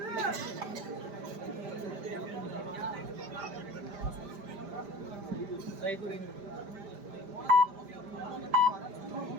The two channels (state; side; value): late; left; 5.0 ms